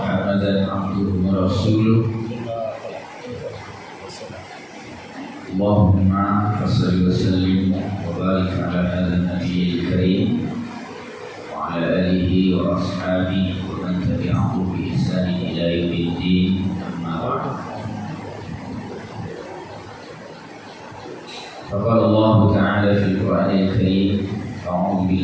abduhu wa rasuluh. Allahumma shalli wa sallim wa barik ala hadzal nabiyil karim wa ala alihi wa ashabihi wa man tabi'ahu bi ihsan ila yaumiddin. Amma ba'd. Faqala Allah ta'ala fil Qur'anil Karim, a'udzu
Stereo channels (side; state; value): both; identical; correlation 1.00